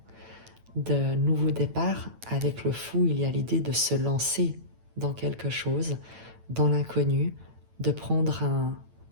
de nouveaux départs. Avec le fou, il y a l'idée de se lancer dans quelque chose, dans l'inconnu, de prendre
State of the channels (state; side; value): late; left; 9.0 ms